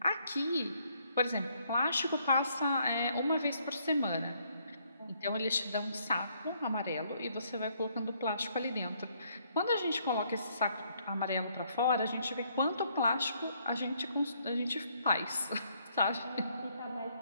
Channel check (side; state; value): both; inverted; correlation -0.69